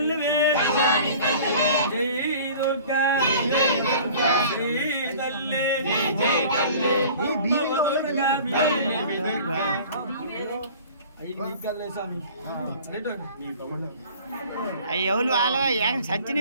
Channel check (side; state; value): both; inverted; correlation -0.45